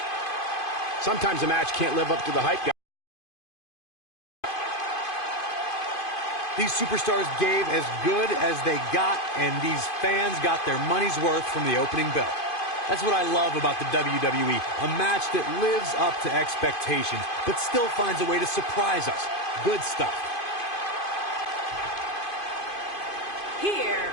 Sometimes a match can't live up to the hype, guys. these superstars gave as good as they got, and these fans got their money's worth from the opening bell. That's what I love about the WWE, a match that lives up to expectations, but still finds a way to surprise us. Good stuff. Here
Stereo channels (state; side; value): late; right; 2.5 ms